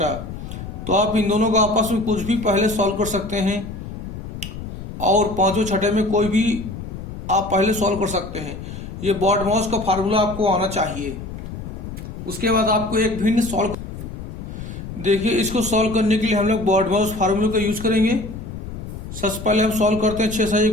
तो आप इन दोनों का आपस में कुछ भी पहले सॉल्व कर सकते हैं, और पांचों छठे में कोई भी आप पहले सॉल्व कर सकते हैं। ये बॉडमॉस का फार्मूला आपको आना चाहिए। उसके बाद आपको एक भिन्न सॉल्व, देखिए इसको सॉल्व करने के लिए हम लोग बॉडमॉस फार्मूले का यूज करेंगे। सबसे पहले हम सॉल्व करते हैं 6 से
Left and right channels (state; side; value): noise; left; rumble, 9 dB below the sound